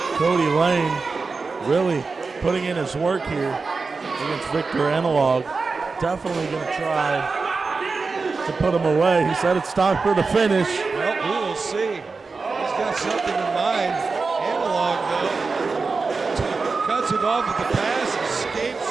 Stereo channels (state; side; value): quieter; left; 4.3 dB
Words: Kody Lane really putting in his work here against Victor Analog. Definitely going to try to put him away. He said it's time for the finish. Well, we will see. He's got something in mind. Analog, though, cuts it off at the pass, escapes